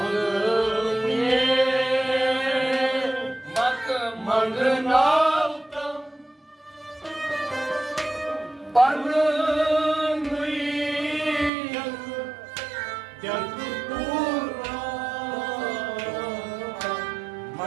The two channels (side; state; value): left; drops out; at 11.5 s